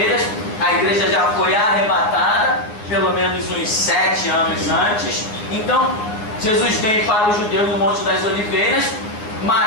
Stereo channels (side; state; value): right; late; 9.5 ms